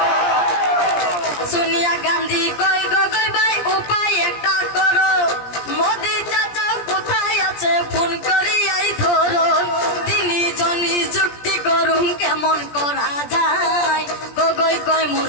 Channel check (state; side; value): late; right; 17 ms